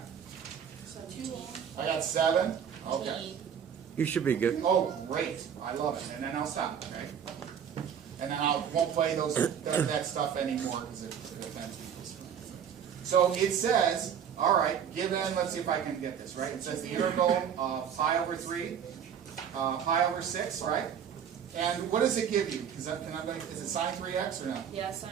So 2 long. I got 7. Okay. You should be good. Oh, great. I love it. And then I'll stop, okay? And then I won't play that stuff anymore because it offends people. So it says, all right, given, let's see if I can get this, right? It says the integral of pi over 3, pi over 6, right? And what does it give you? Is it sine 3x or no? Yeah,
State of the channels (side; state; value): left; quieter; 8.2 dB